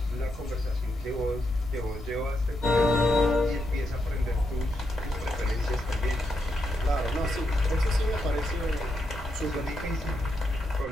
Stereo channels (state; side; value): normal; both; correlation 0.82